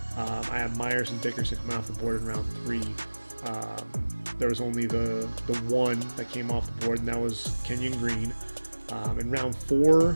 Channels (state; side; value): inverted; both; correlation -1.00